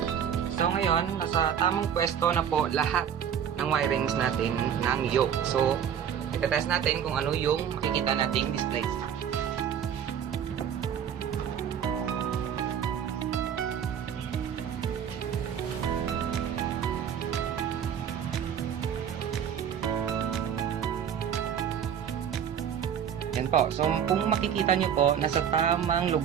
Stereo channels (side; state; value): left; quieter; 8.5 dB